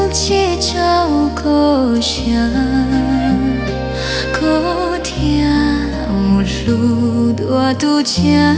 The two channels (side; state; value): both; identical; correlation 1.00